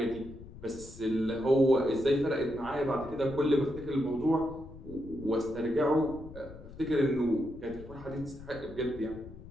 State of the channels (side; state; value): left; noise; rumble, 16 dB below the sound